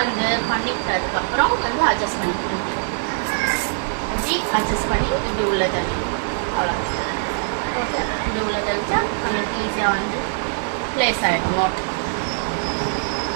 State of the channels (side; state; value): left; silent; digital silence